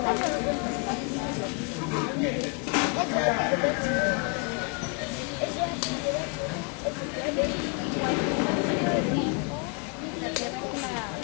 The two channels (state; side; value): quieter; right; 32.9 dB